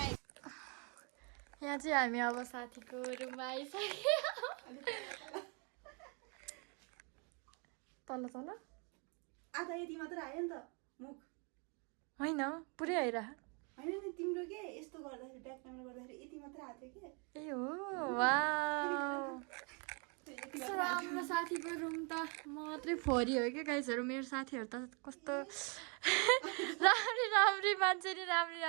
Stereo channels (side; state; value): left; quieter; 34.6 dB